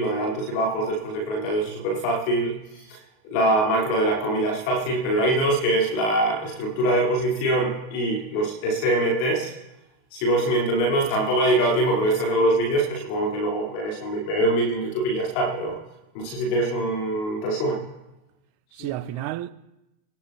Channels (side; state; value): right; late; 37 ms